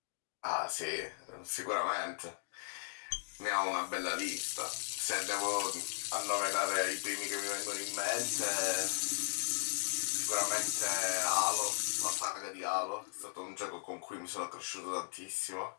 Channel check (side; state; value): right; silent; digital silence